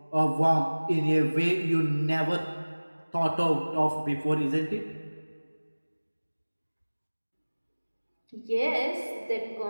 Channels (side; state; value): both; inverted; correlation -1.00